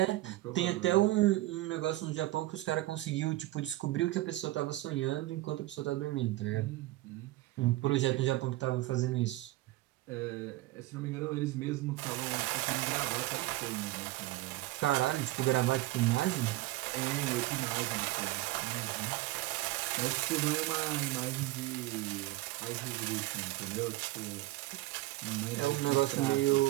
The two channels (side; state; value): left; quieter; 17.9 dB